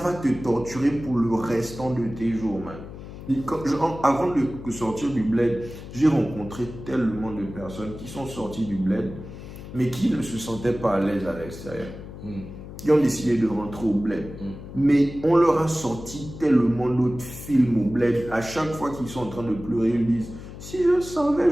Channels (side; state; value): left; noise; hum, 13 dB below the sound